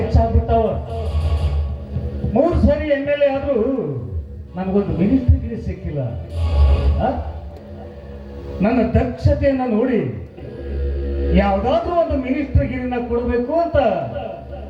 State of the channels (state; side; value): identical; both; correlation 1.00